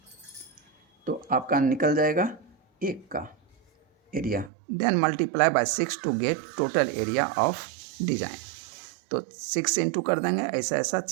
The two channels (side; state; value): left; drops out; at 4.5 s